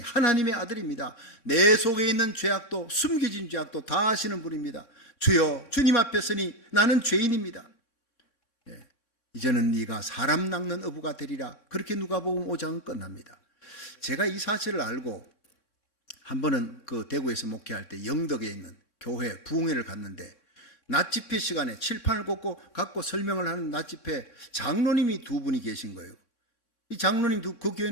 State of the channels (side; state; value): right; late; 3.6 ms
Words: 아들입니다. 내 속에 있는 죄악도 숨겨진 죄악도 다 아시는 분입니다. 주여 주님 앞에 서니 나는 죄인입니다. 이제는 네가 사람 낚는 어부가 되리라. 그렇게 누가복음 5장은 끝납니다. 제가 이 사실을 알고 한 번은 그 대구에서 목회할 때 영덕에 있는 교회 부흥회를 갔는데 낮 집회 시간에 칠판을 갖고 설명을 하는 낮 집회 장로님이 2분이 계신 거예요. 이 장로님 그